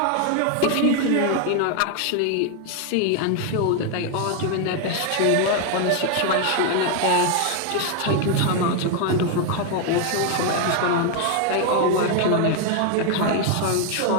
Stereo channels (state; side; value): different; both; correlation 0.01